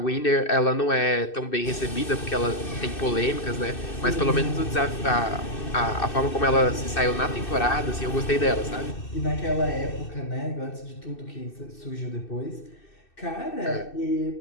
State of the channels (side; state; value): right; late; 2.6 ms